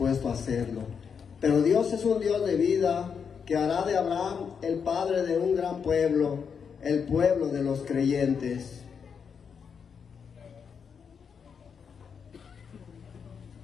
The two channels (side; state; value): right; quieter; 6.6 dB